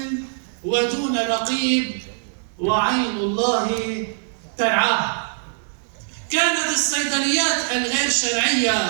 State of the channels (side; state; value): left; silent; digital silence